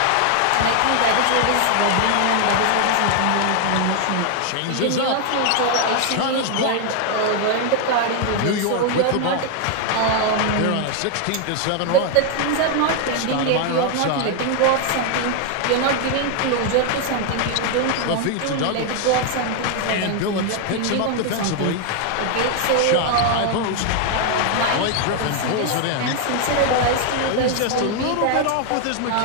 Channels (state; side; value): different; both; correlation 0.00